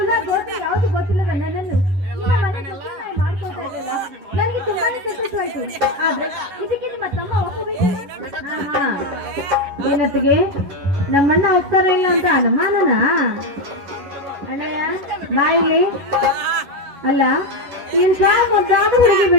ಗೋತ್ರ ಯಾವುದು ಗೊತ್ತಿಲ್ಲದ ನನ್ನನ್ನು ಮಾಡ್ಕೊಳ್ತಾ ಇದ್ದಲ್ಲ, ನನಗೆ ತುಂಬಾನೇ ಸಂತೋಷವಾಯ್ತು. ಆದ್ರೆ ಇದಕ್ಕೆ ನಿಮ್ಮ ತಮ್ಮ ಒಪ್ಪಬೇಕು. ಏನತ್ತಿಗೆ ನಮ್ಮಣ್ಣ ಹೋಗ್ತಾರ ಇಲ್ಲ ಅಂತ ಅನುಮಾನನ? ಅಣ್ಣಯ್ಯ ಬಾಯಿಲಿ ಅಲ್ಲ, ಏನ್ ಮುದ್ದಾದ ಹುಡುಗಿ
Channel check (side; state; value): left; late; 11 ms